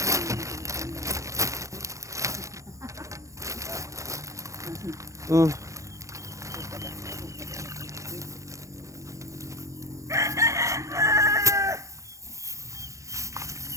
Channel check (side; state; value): left; late; 0.15 ms